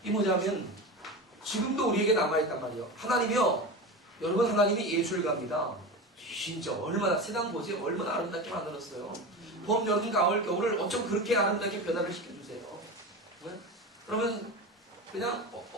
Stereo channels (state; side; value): normal; both; correlation 0.26